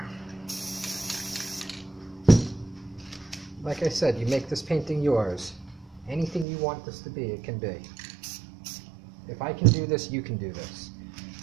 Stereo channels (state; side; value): drops out; left; at 6.5 s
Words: Like I said, you make this painting yours. Anything you want this to be, it can be. If I can do this, you can do this.